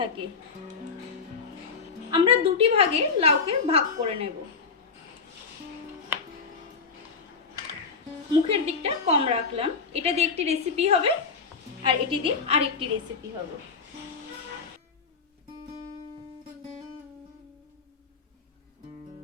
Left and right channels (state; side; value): quieter; right; 5.2 dB